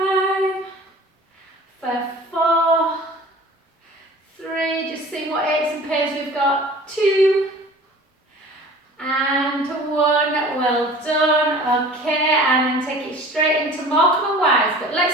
for 4, 3, just see what aches and pains we've got, 2, and 1, well done, okay, and then take it straight into Morecambe and Wise, but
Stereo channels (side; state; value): both; normal; correlation 0.43